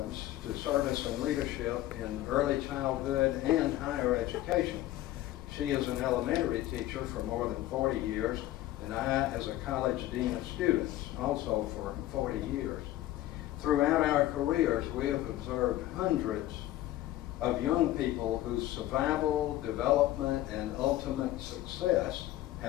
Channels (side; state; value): right; quieter; 14.8 dB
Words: to service and leadership in early childhood and higher education. She is an elementary teacher for more than 40 years, and I as a college dean of students, also for 40 years. Throughout our careers, we have observed hundreds of young people whose survival, development, and ultimate success